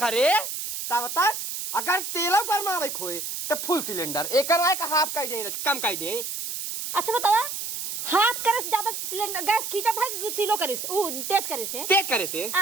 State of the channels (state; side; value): noise; right; hiss, 5 dB below the sound